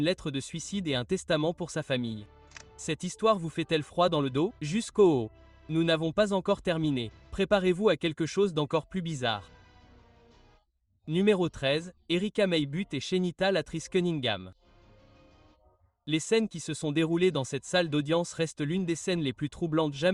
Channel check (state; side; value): identical; both; correlation 1.00